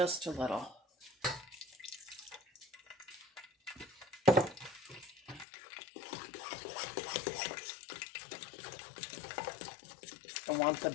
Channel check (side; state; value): right; drops out; at 5.5 s